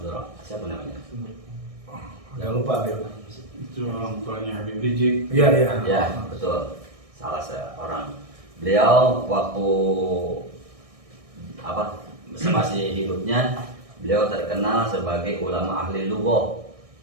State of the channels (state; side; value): late; left; 1.6 ms